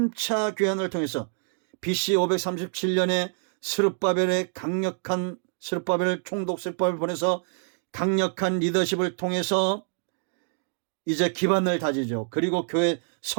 교환을 통해서 BC 537년에 스룹바벨의 강력한 스룹바벨 총독 스룹바벨을 보내서 강력한 리더십을 통해서 이제 기반을 다지죠. 그리고 교회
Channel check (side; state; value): left; silent; 61 dB below the other